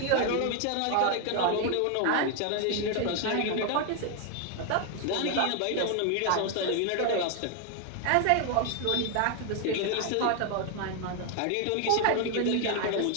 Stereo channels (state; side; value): different; both; correlation 0.01